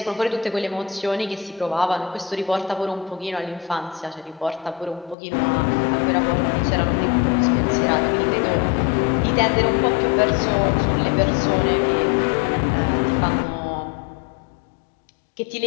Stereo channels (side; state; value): right; drops out; at 5.2 s